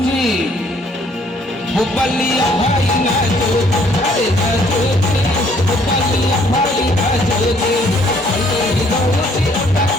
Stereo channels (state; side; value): normal; both; correlation 0.63